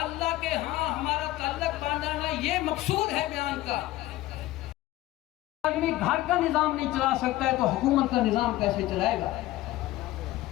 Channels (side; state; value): right; quieter; 16.5 dB